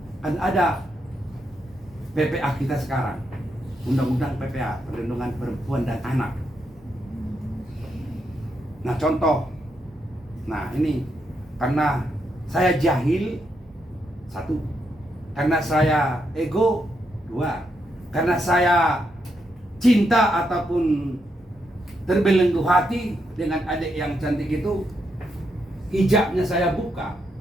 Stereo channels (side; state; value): both; normal; correlation 0.81